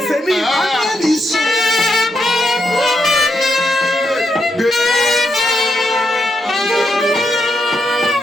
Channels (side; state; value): both; normal; correlation 0.82